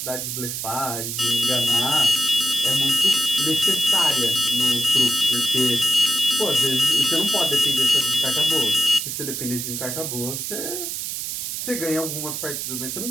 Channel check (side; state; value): right; noise; hiss, 4 dB below the sound